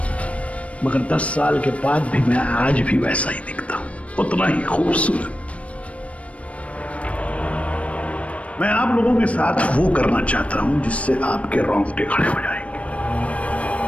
मगर 10 साल के बाद भी मैं आज भी वैसा ही दिखता हूं, उतना ही खूबसूरत। मैं आप लोगों के साथ वो करना चाहता हूं जिससे आपके रोंगटे खड़े हो जाएंगे।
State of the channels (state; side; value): late; right; 0.064 ms